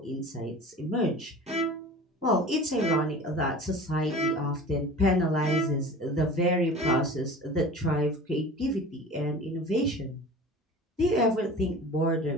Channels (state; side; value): normal; both; correlation 0.39